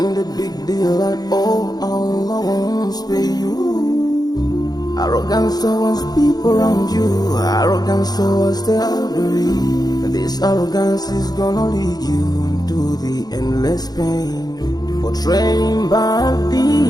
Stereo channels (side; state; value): right; late; 0.19 ms